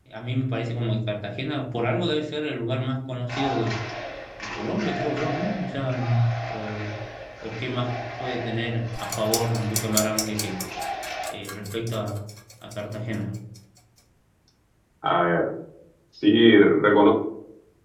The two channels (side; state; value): both; identical; correlation 1.00